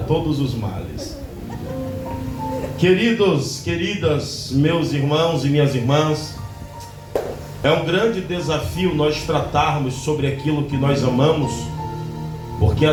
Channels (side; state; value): both; identical; correlation 1.00